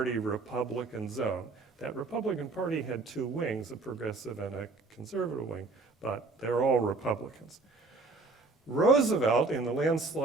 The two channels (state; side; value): quieter; left; 3.7 dB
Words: Republican zone. That Republican Party had 2 wings, a progressive and a conservative wing, but they're all Republicans. Roosevelt, in the